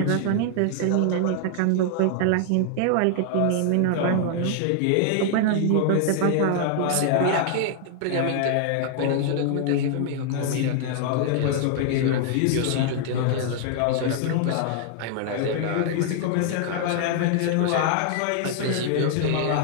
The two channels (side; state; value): both; different; correlation 0.00